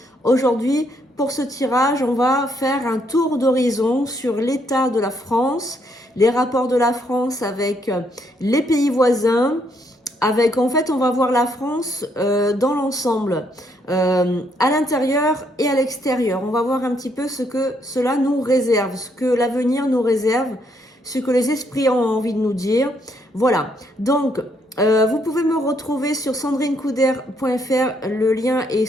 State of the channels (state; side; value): normal; both; correlation 0.72